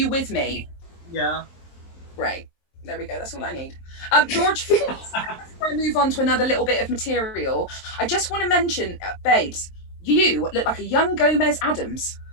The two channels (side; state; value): right; late; 22 ms